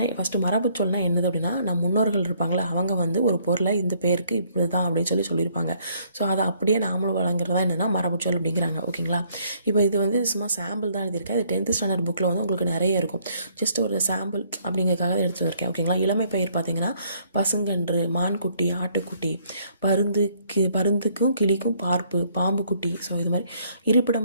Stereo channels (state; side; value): inverted; both; correlation -0.66